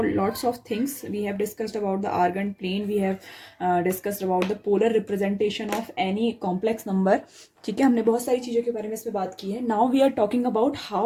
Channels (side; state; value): both; identical; correlation 1.00